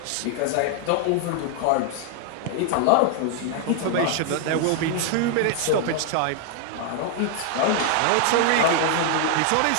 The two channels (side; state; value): both; different; correlation 0.00